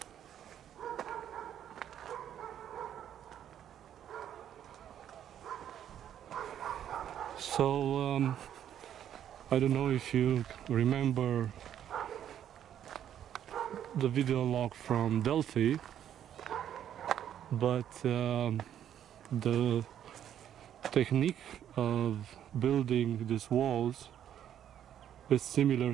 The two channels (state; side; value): quieter; left; 10.1 dB